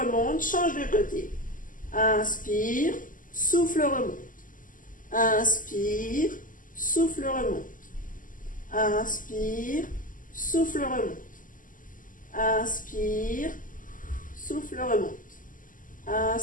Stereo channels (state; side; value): late; right; 0.38 ms